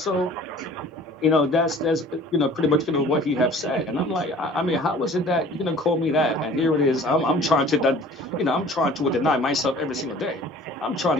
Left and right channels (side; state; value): both; normal; correlation 0.48